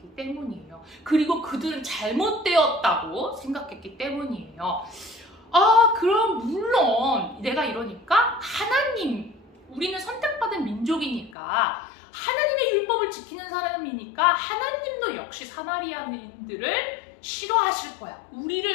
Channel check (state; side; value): drops out; right; at 11.3 s